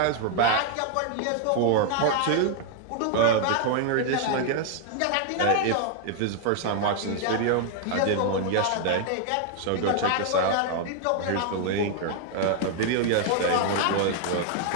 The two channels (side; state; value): both; different; correlation 0.00